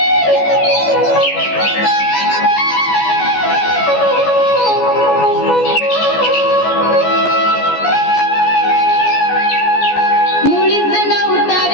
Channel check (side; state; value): right; late; 14 ms